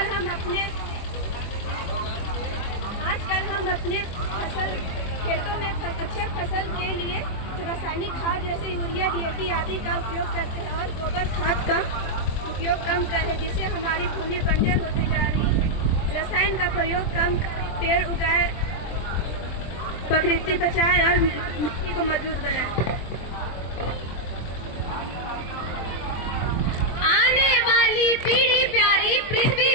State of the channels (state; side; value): late; right; 24 ms